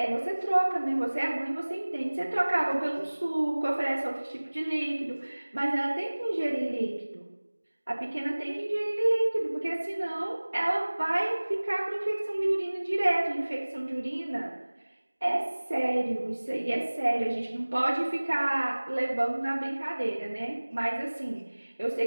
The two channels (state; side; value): inverted; both; correlation -1.00